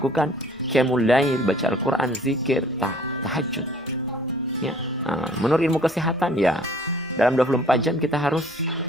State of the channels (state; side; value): normal; both; correlation 0.54